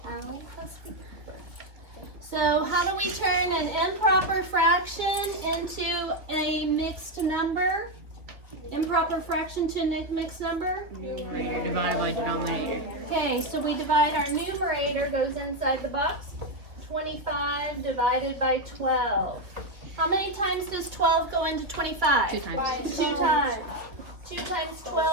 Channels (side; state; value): left; late; 2.2 ms